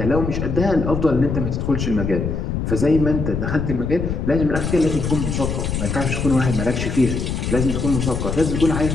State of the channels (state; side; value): noise; left; rumble, 2 dB below the sound